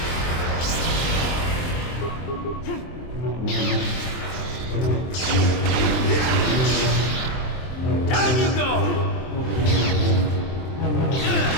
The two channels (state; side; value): late; right; 23 ms